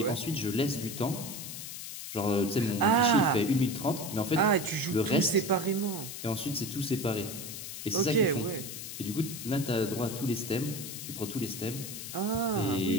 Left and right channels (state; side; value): noise; left; hiss, 8 dB below the sound